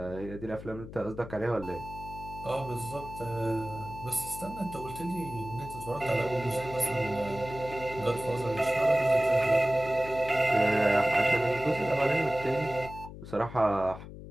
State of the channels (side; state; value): left; noise; hum, 13 dB below the sound